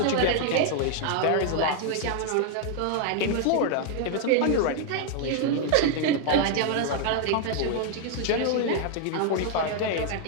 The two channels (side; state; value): both; different; correlation 0.00